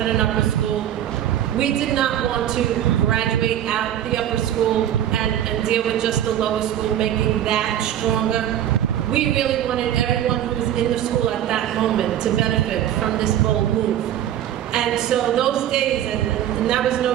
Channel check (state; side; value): quieter; left; 11.3 dB